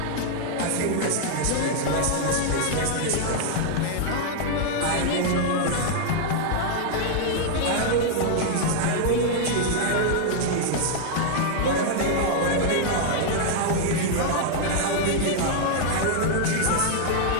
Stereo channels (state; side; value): different; both; correlation 0.00